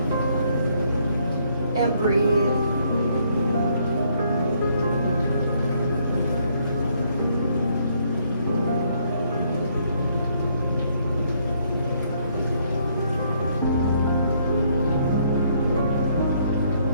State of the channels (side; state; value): both; inverted; correlation -0.69